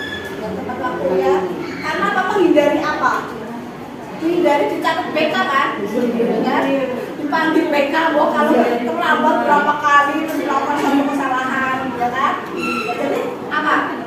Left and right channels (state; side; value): identical; both; correlation 1.00